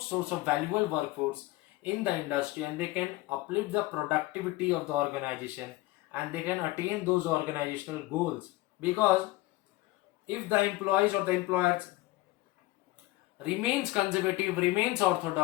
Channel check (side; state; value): right; quieter; 19.1 dB